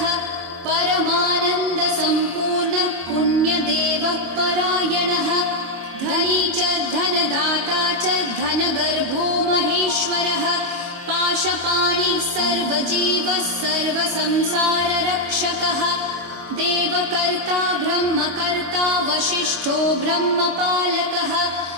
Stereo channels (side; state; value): left; late; 22 ms